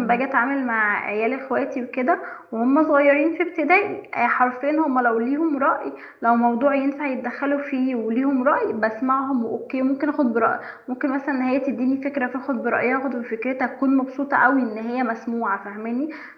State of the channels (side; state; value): both; identical; correlation 1.00